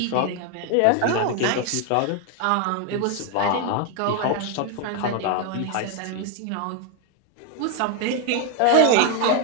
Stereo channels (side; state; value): both; different; correlation 0.01